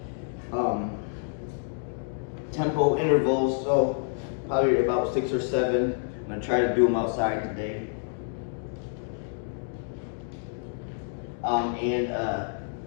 tempo intervals, so probably about 6 or 7. I'm gonna try to do them outside today.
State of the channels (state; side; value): silent; right; digital silence